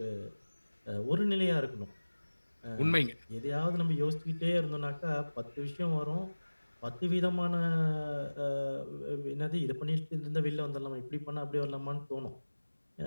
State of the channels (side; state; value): both; inverted; correlation -1.00